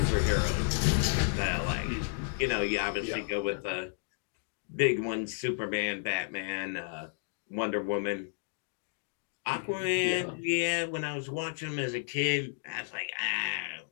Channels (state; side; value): silent; right; digital silence